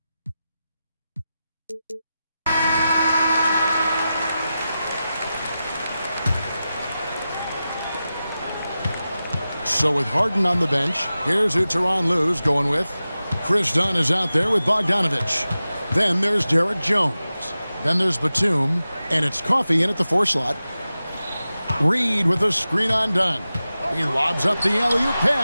So with Harden on the bench, here's who Tyronn Lue's going with. Chris Dunn is out there with Bogdanovich. Then there's Derek Jones. Then there's Batum, and it's Coffey in at the 4 slot. Reed with a screen on Dunn. He lobs up the alley-oop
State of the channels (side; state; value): both; inverted; correlation -0.93